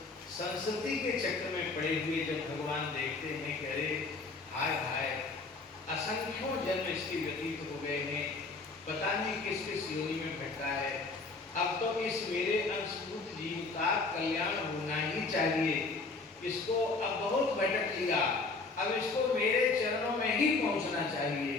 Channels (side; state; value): right; quieter; 3.9 dB